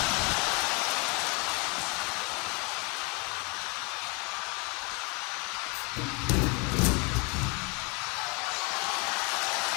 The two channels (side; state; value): right; quieter; 31.0 dB